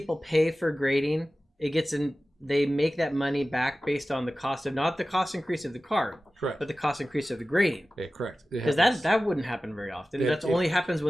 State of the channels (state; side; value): normal; both; correlation 0.96